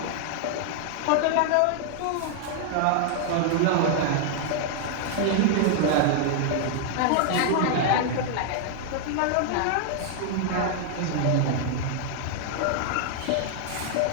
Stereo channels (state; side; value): different; both; correlation 0.00